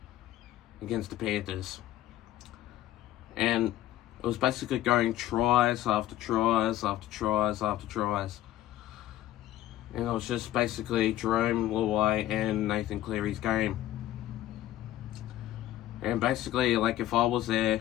against the Panthers. And it was basically going tries after tries after tries after tries. And it was just basically Jerome Luai and Nathan Cleary's game. And basically, like, if I was there,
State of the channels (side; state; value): right; quieter; 13.8 dB